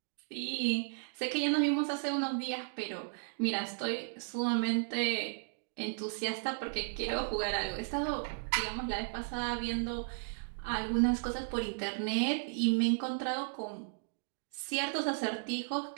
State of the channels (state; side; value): silent; left; digital silence